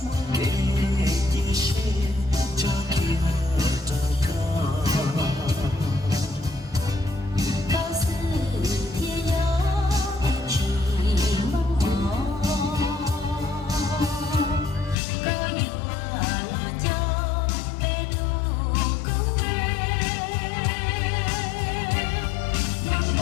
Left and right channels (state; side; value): drops out; right; at 15.0 s